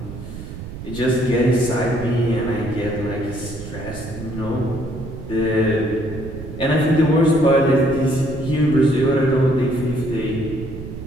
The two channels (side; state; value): right; noise; rumble, 11 dB below the sound